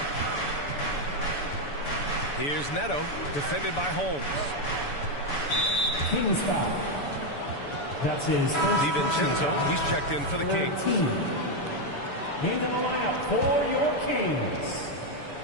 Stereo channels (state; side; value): late; right; 7.0 ms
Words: Here's Neto, defended by Holmes. Kings foul. That's his first. DiVincenzo, he's checked in for the Kings. Into the lineup for your Kings,